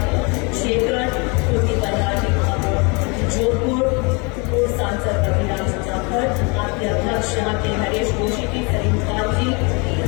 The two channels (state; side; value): quieter; right; 30.7 dB